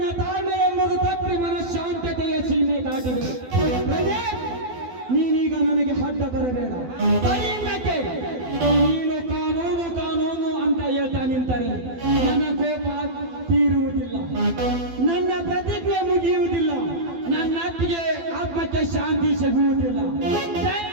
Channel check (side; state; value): left; late; 12 ms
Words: ತಾಳ್ಮೆ ಎಂಬುದು ತಪ್ಪಿ ಮನಃಶಾಂತತೆಯ ಸೀಮೆ ದಾಟಿದೆ. ನೀನೀಗ ನನಗೆ ಅಡ್ಡ ಬರಬೇಡ. ಕೈಯಿಂದಕ್ಕೆ ನೀನು ಕಾನೂನು ಅಂತ ಹೇಳ್ತಾ ನಿಂತರೆ ನನ್ನ ಕೋಪ ತೀರುವುದಿಲ್ಲ, ನನ್ನ ಪ್ರತಿಜ್ಞೆ ಮುಗಿಯುವುದಿಲ್ಲ, ನನ್ನ ಅತ್ತಿಗೆ ಆತ್ಮಕ್ಕೆ ಶಾಂತಿ ಸಿಗುವುದಿಲ್ಲ.